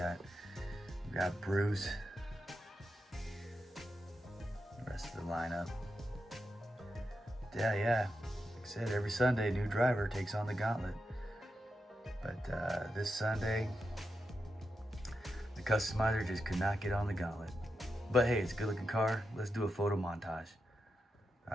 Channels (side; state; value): both; normal; correlation 0.87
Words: got Bruce. The rest of the lineup. Yeah. Like I said, every Sunday, new driver takes on the Gauntlet. But this Sunday, the Kustomizer just could not get on the Gauntlet. But hey, it's a good looking car. Let's do a photo montage.